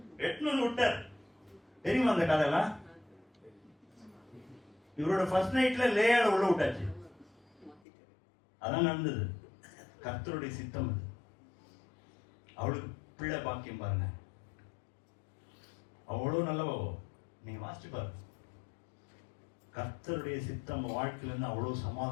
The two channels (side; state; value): right; drops out; at 7.8 s